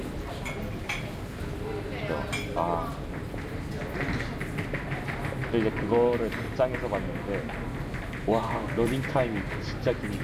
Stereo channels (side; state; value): both; identical; correlation 1.00